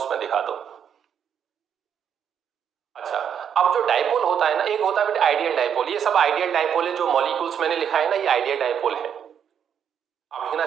दिखा दो। अच्छा, अब जो डाइपोल होता है ना, एक होता है बेटा आइडियल डाइपोल, ये सब आइडियल डाइपोल है, जो मॉलिक्यूल्स मैंने लिखा है ना ये आइडियल डाइपोल है। आप लिखना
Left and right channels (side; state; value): left; quieter; 8.3 dB